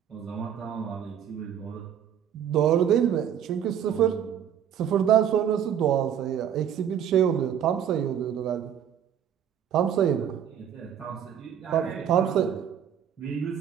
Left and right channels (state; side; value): quieter; left; 9.1 dB